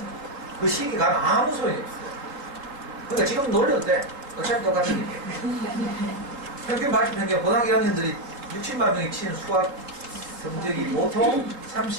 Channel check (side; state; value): left; late; 3.7 ms